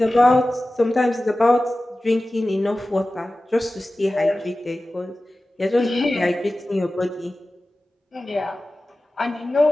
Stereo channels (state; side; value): normal; both; correlation 0.96